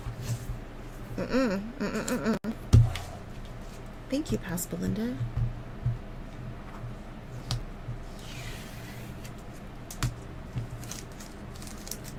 Thank you, Pascalinda.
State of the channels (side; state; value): both; identical; correlation 1.00